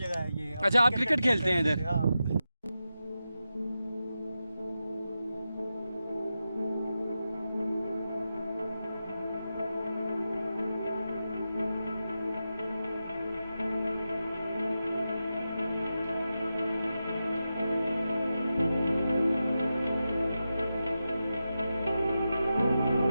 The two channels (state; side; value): inverted; both; correlation -0.90